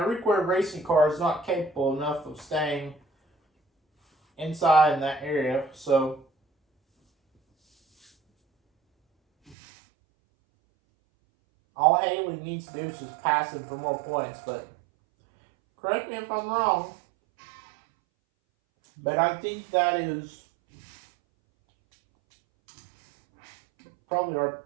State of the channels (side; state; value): left; drops out; at 9.6 s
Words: required racing car is not capable enough of staying inside in that area. So all Haley needs to do is just pass him for more points, but Correct me if I'm wrong, but I think that is probably our